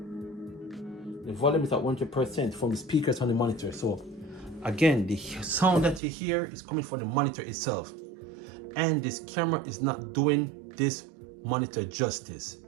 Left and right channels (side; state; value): left; drops out; at 6.0 s